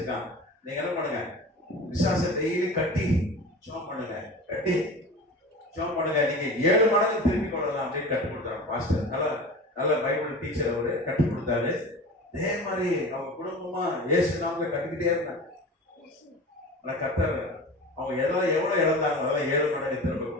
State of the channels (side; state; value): both; normal; correlation 0.34